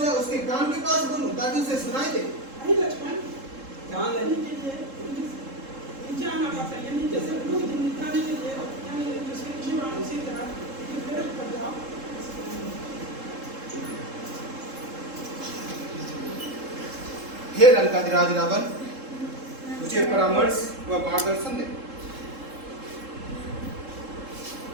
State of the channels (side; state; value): left; late; 3.7 ms